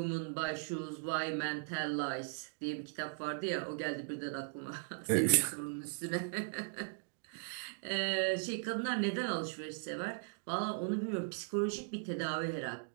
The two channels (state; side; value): silent; left; digital silence